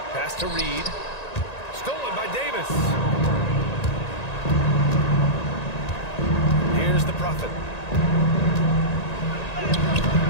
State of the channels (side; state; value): right; late; 1.9 ms